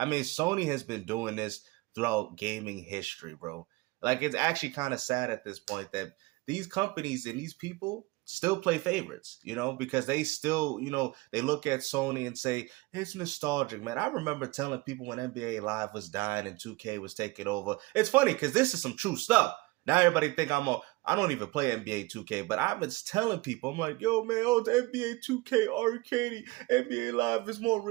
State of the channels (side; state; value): left; quieter; 22.4 dB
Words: mean, Sony has been doing this throughout gaming history, bro. Like, it's actually kind of sad at this point that these companies and these people still play favorites, you know, because they still, you know, they look at Sony and say, it's nostalgic, man. I remember telling people when NBA Live was dying and 2K was taking over. It's funny because this is some true stuff. Now everybody think I don't even play NBA 2K, but I've been telling people, I'm like, yo, man, the NBA 2K arcade, NBA Live is more